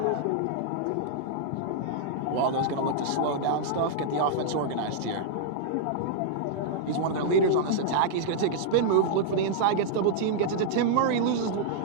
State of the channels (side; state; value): both; different; correlation -0.02